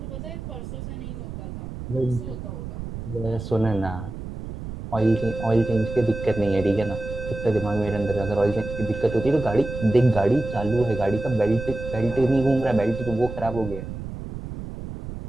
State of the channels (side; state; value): right; noise; rumble, 9 dB below the sound